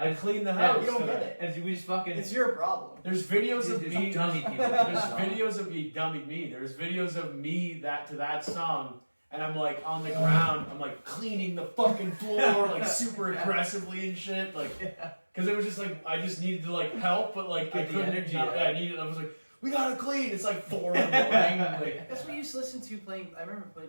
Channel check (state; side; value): inverted; both; correlation -1.00